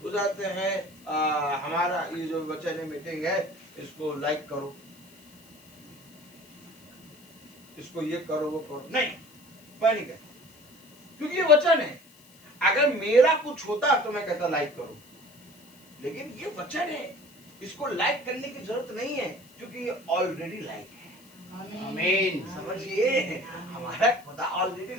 बुझाते हैं हमारा ये जो वचन मीटिंग है इसको लाइक करो, इसको ये करो वो करो, नहीं, मैं नहीं कहता, क्योंकि ये वचन है। अगर मेरा कुछ होता तो मैं कहता लाइक करो, लेकिन ये वचन है, इसको लाइक करने की जरूरत नहीं है, क्योंकि ये ऑलरेडी लाइक है। आमीन। समझिए, हमारा खुदा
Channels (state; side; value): noise; left; hiss, 26 dB below the sound